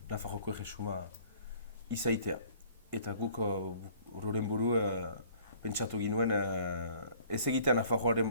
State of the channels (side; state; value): both; inverted; correlation -0.54